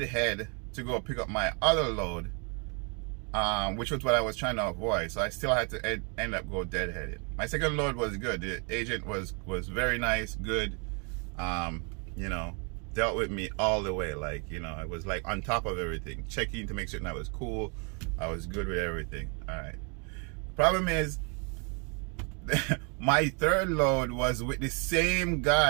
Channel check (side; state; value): left; quieter; 35.3 dB